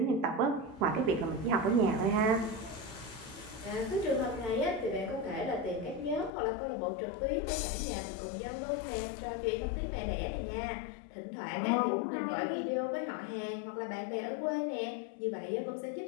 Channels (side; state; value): right; drops out; at 6.3 s